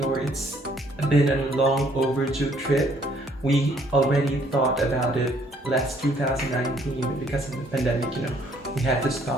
It's been a long overdue trip. We already thought about it last 2019, but because of the pandemic, we had to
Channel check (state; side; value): normal; both; correlation 0.64